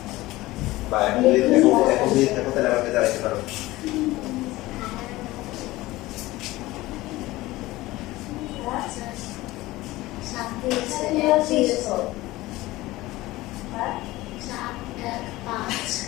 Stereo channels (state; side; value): quieter; right; 18.5 dB